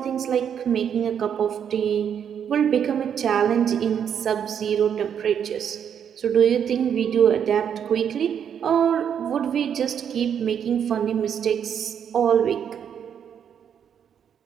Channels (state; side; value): quieter; left; 8.3 dB